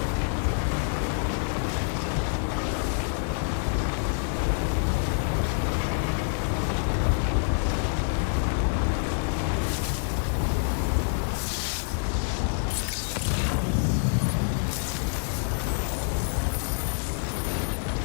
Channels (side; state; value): right; silent; 60 dB below the other